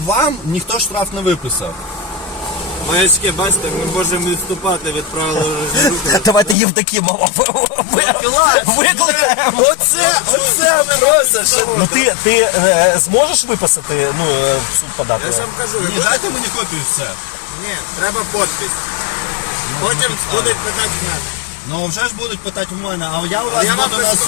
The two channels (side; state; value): right; drops out; at 6.6 s